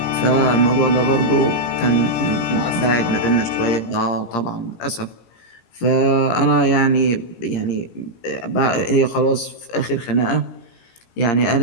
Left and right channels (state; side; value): late; right; 17 ms